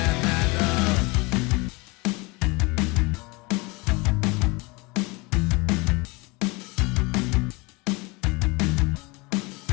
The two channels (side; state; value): right; quieter; 26.2 dB